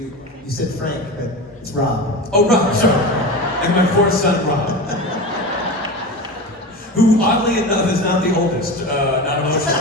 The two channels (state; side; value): normal; both; correlation 0.27